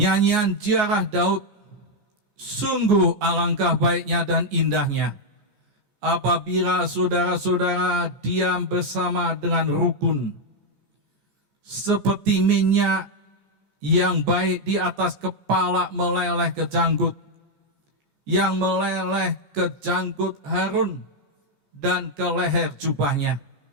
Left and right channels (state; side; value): late; left; 14 ms